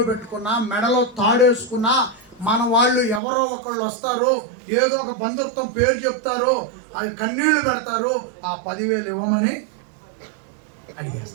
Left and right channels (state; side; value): drops out; left; at 3.2 s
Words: పెట్టుకున్నా, మెడలో తాడేసుకున్నా, మన వాళ్ళు ఎవరో ఒకళ్ళు వస్తారు, ఏదో ఒక బంధుత్వం పేరు చెప్తారు, అది కన్నీళ్లు పెడతారు, ఆ 10,000 ఇవ్వమని